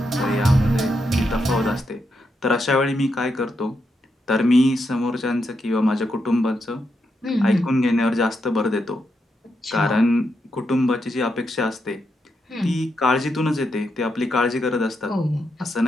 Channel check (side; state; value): both; normal; correlation 0.83